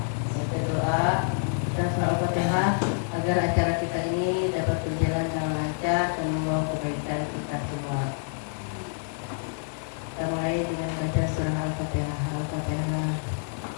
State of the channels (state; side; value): silent; right; digital silence